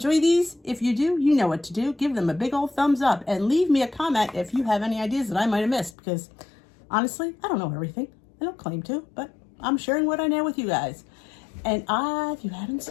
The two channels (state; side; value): drops out; right; at 6.0 s